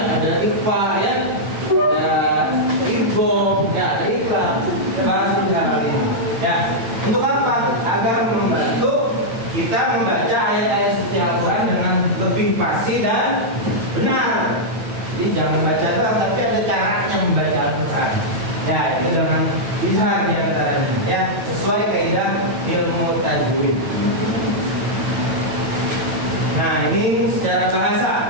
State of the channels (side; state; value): left; late; 9.0 ms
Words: ada ikhfa ya, ada idgham, ya, ada ikhlas. Kita bahas ijtihad kali ini. Ya, untuk apa? Agar membantu kita membaca ayat-ayat suci Al-Quran dengan lebih pasti dan benar. Jadi jangan baca doang, tapi ada caranya membaca Al-Quran. Ya, itu dengan ijtihad di antaranya ya, sesuai kaidah ilmu tajwid. Nah, ini secara